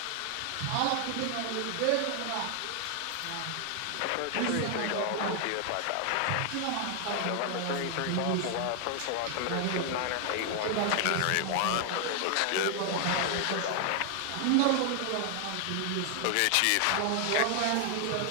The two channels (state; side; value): different; both; correlation 0.00